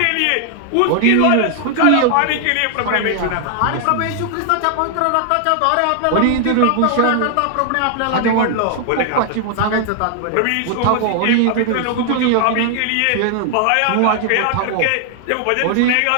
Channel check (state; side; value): different; both; correlation 0.00